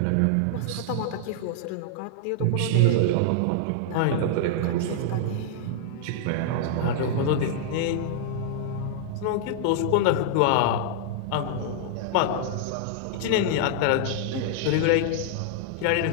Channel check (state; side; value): different; both; correlation -0.01